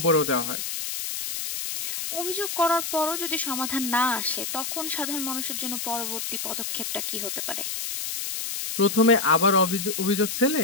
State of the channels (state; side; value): noise; left; hiss, 4 dB below the sound